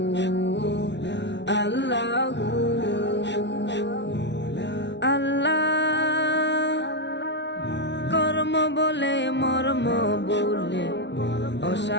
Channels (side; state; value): right; late; 0.51 ms